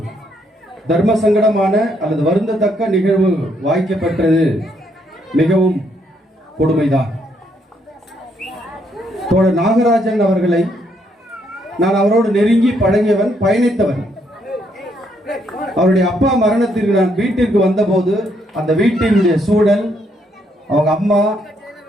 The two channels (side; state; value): both; normal; correlation 0.73